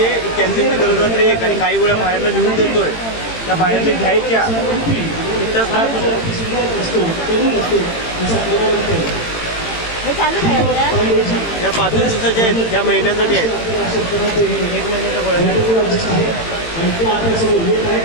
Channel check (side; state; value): right; late; 18 ms